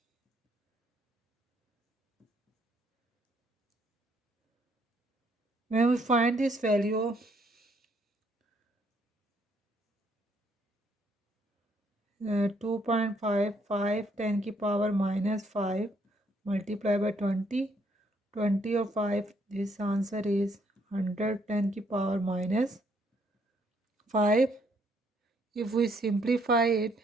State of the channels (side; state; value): both; normal; correlation 0.69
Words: When we find this value, 2.55 10 की power minus 5 multiplied by 20. 20 or 5, this answer is 110 की power minus 5. If we simplify it,